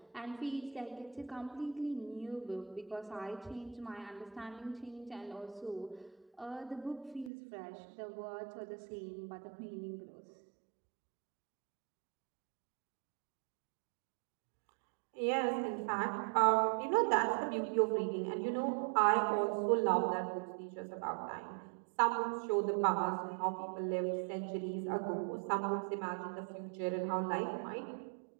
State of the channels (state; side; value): drops out; left; at 7.3 s